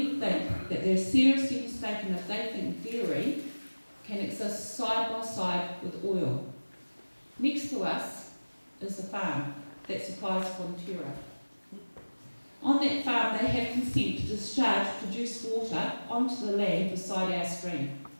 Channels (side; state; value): both; inverted; correlation -1.00